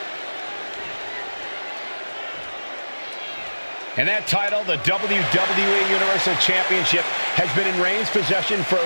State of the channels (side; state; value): both; inverted; correlation -1.00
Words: And that title, the WWE Universal Championship, has been in Reigns' possession for